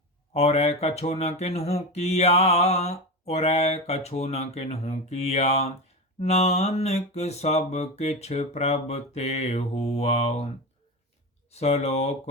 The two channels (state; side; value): normal; both; correlation 0.21